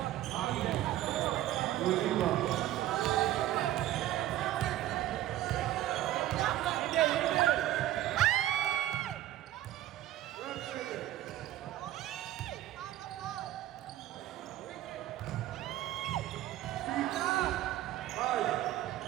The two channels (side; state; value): left; quieter; 13.8 dB